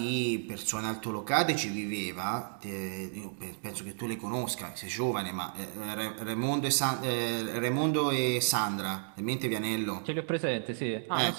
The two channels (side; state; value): left; silent; 56 dB below the other